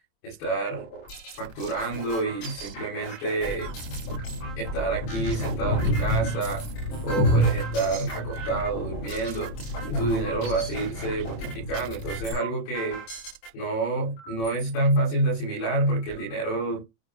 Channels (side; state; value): right; late; 27 ms